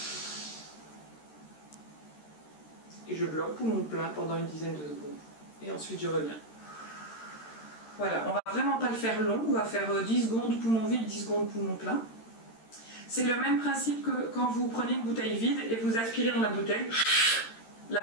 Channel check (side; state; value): right; late; 13 ms